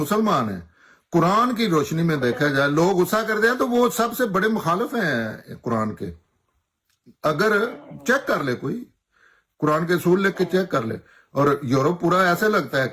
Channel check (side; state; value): both; identical; correlation 1.00